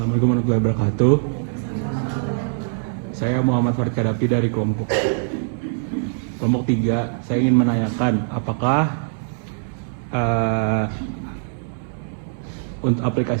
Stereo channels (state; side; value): silent; left; 60 dB below the other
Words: warahmatullahi wabarakatuh. Saya Muhammad Farid Kadapi dari kelompok 3. Saya ingin menanyakan apakah untuk